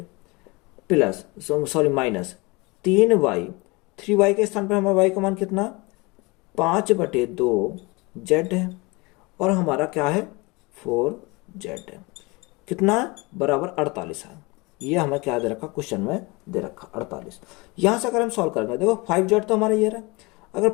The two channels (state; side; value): quieter; right; 25.7 dB